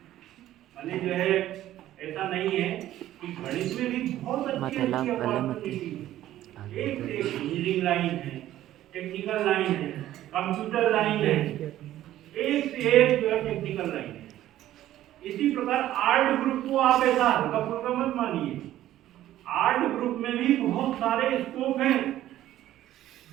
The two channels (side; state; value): left; quieter; 13.4 dB